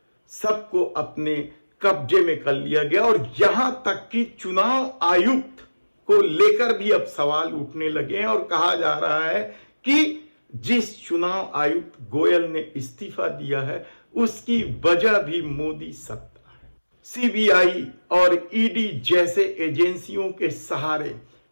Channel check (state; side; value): inverted; both; correlation -1.00